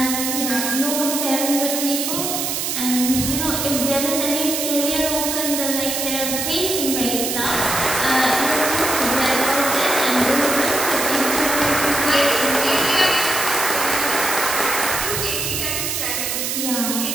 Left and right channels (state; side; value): noise; right; hiss, 1 dB below the sound